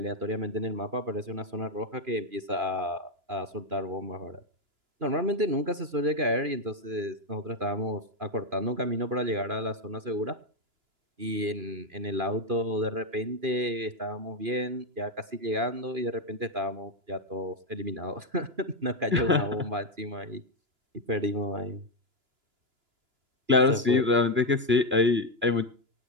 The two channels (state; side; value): late; left; 2.9 ms